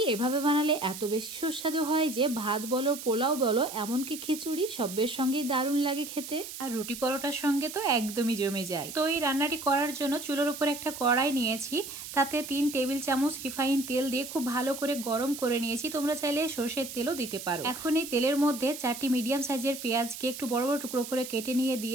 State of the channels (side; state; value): right; noise; hiss, 10 dB below the sound